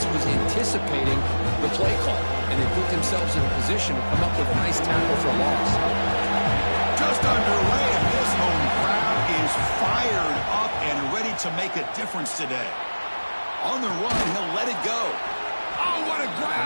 was anticipating the play call, and they put themselves in a position to come up with a nice tackle for a loss. Just underway, and this home crowd is fired up and ready to make a difference today. On the run, he'll let it go. Oh, what a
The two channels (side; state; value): both; inverted; correlation -1.00